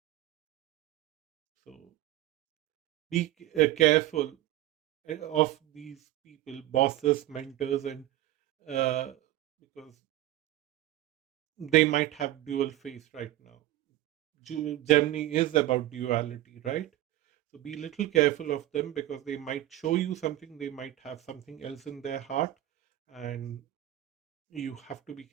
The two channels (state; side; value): quieter; left; 14.8 dB